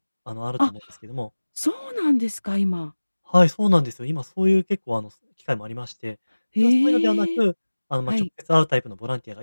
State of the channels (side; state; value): both; inverted; correlation -1.00